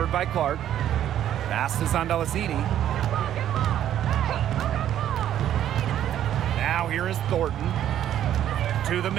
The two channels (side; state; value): left; quieter; 11.1 dB